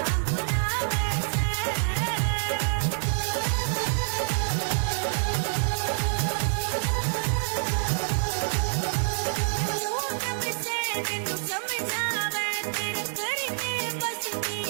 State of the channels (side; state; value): left; silent; 60 dB below the other